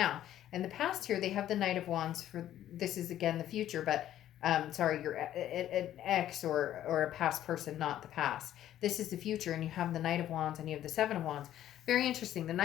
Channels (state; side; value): quieter; right; 12.1 dB